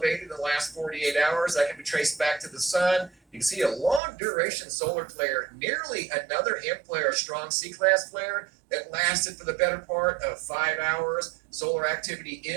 in the last 48 hours. That can be traced back to the sun. You can see a long duration solar flare, nearly another M flare, a strong C-class flare that lasted for the better part of 5 hours. Solar activity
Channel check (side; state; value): left; drops out; at 4.0 s